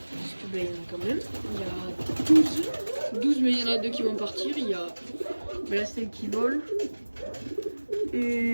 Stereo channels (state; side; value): inverted; both; correlation -1.00